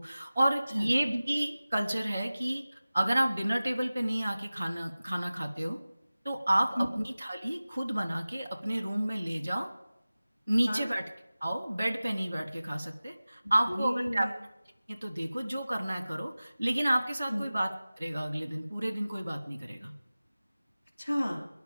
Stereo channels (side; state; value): both; inverted; correlation -0.97